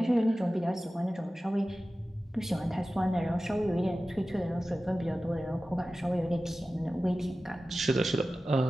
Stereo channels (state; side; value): normal; both; correlation 0.95